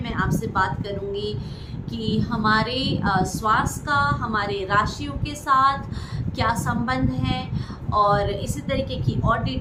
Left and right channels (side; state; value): both; identical; correlation 1.00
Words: मैं आपसे बात करूँगी कि हमारे श्वास का हमारे राशियों के साथ क्या संबंध है, और इसी तरीके की और